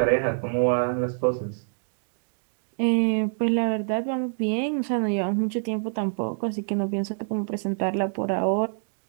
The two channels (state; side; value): silent; left; digital silence